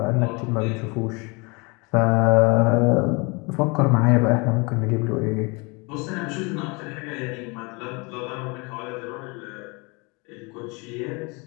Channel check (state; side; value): quieter; right; 28.9 dB